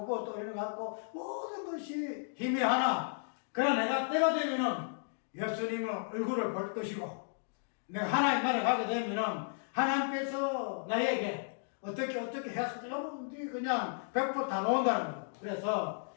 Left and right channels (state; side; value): silent; right; digital silence